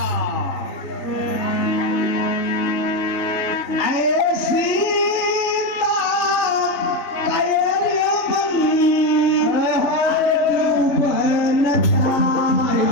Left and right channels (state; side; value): late; right; 3.3 ms